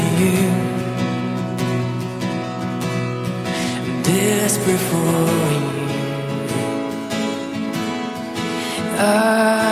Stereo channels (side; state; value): both; identical; correlation 1.00